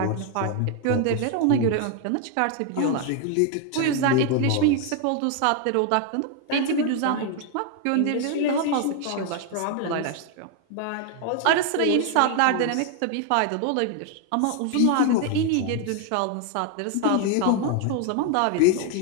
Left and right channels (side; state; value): both; different; correlation 0.01